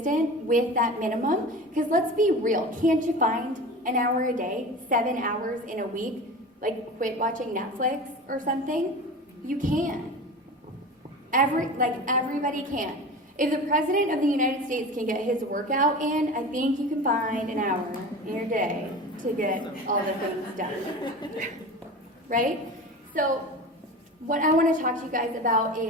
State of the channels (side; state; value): both; normal; correlation 0.33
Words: with that minimum. Because let's be real, can't you find an hour a day, 7 hours in a week, quit watching Netflix or something? You can. Everybody can. If the President of the United States can get his workout in, I think you can find an hour in your day to get all the things done. Right? So what I want to talk to you guys about